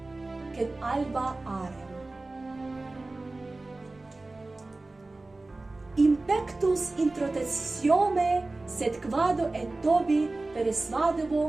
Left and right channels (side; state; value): left; quieter; 3.1 dB